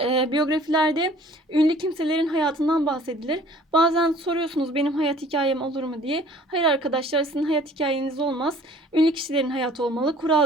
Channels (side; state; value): both; normal; correlation 0.53